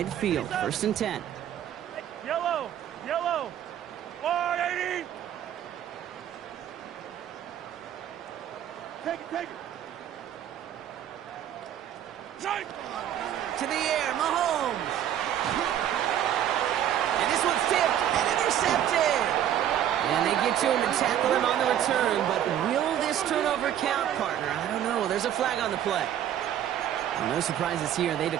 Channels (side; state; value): left; quieter; 10.7 dB